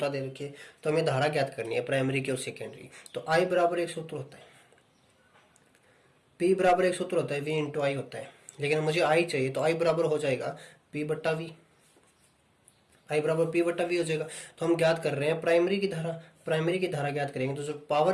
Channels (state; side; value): identical; both; correlation 1.00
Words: दे रखी है। तो हमें धारा ज्ञात करनी है प्राइमरी की और सेकेंडरी। तो आई बराबर एक सूत्र होता है, पी बराबर एक सूत्र होता है, वी इंटू आई होता है, लेकिन मुझे आई चाहिए तो आई बराबर हो जाएगा पी बट्टा वी, आई बराबर पी बट्टा वी हो जाएगा। तो हम ज्ञात कर रहे हैं प्राइमरी की धारा, प्राइमरी की धारा ज्ञात करेंगे तो जो